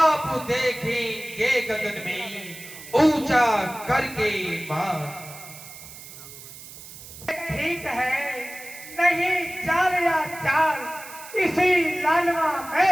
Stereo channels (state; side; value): noise; right; hiss, 15 dB below the sound